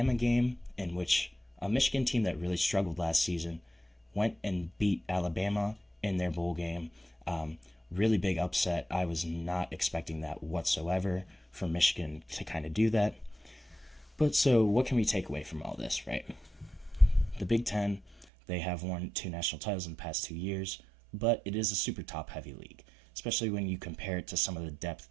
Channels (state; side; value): drops out; left; at 18.2 s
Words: game, in which a Michigan team that really struggled last season went and beat Alabama in their bowl game. Really big upset. I was not expecting that whatsoever for Michigan to kind of do that. But so what can we take away from all this, right? The Big Ten, they have won 2 national titles in the past 2 years, but it is a super top-heavy league, especially when you compare it to some of the depth